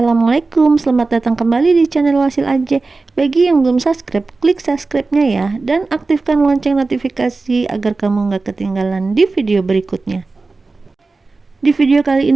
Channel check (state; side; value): quieter; left; 3.7 dB